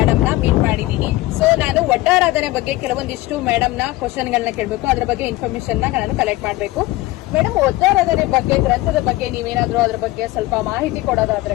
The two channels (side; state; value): right; quieter; 18.5 dB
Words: ನ ಮೀಟ್ ಮಾಡಿದ್ದೀನಿ. ಸೊ ನಾನು ಒಡ್ಡಾರಾಧನೆ ಬಗ್ಗೆ ಕೆಲವೊಂದಿಷ್ಟು ಮೇಡಮ್ ನ ಕ್ವಶನ್ ಗಳನ್ನ ಕೇಳಬೇಕು, ಅದ್ರ ಬಗ್ಗೆ ಇನ್ಫಾರ್ಮೇಶನ್ ನಾನು ಕಲೆಕ್ಟ್ ಮಾಡಬೇಕು. ಮೇಡಮ್, ಒಡ್ಡಾರಾಧನೆ ಬಗ್ಗೆ, ಗ್ರಂಥದ ಬಗ್ಗೆ ನೀವೇನಾದ್ರೂ ಅದ್ರ ಬಗ್ಗೆ ಸ್ವಲ್ಪ ಮಾಹಿತಿ